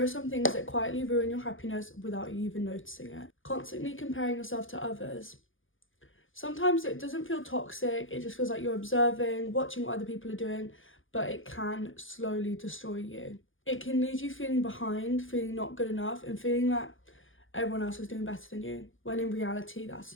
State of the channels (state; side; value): late; right; 0.58 ms